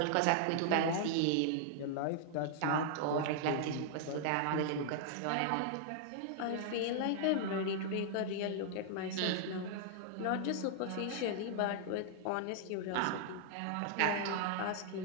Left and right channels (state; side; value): different; both; correlation -0.01